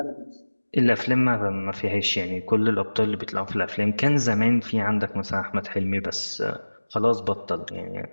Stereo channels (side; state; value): both; inverted; correlation -1.00